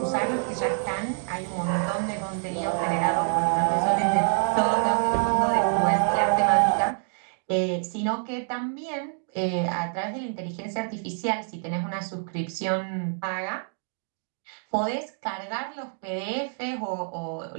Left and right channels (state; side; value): silent; left; 60 dB below the other